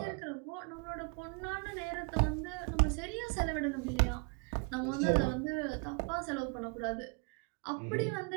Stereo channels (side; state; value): left; quieter; 34.6 dB